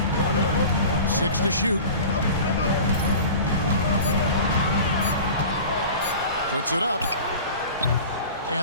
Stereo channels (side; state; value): both; inverted; correlation -0.38